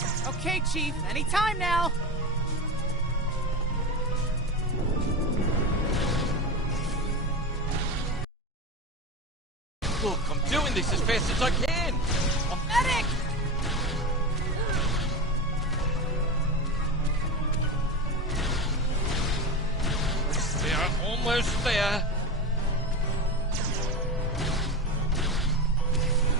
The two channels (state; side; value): normal; both; correlation 0.23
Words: Okay, Chief. Anytime now. Look, I'm doing this as fast as I can. Medic! Almost there.